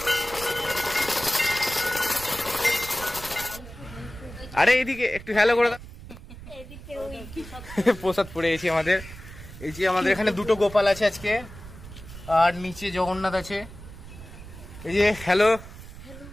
আরে এইদিকে একটু হ্যালো করে দাও। প্রসাদ পড়ে গেছি আমাদের। এই যে আমাদের এখানে দুটো গোপাল আছে আজকে, আর নিচে জগন্নাথ আছে। এই যে হ্যালো,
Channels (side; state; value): right; noise; rumble, 15 dB below the sound